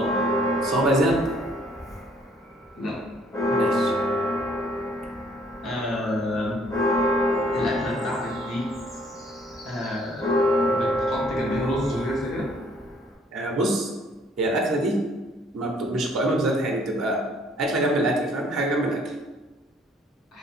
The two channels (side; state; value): both; normal; correlation 0.61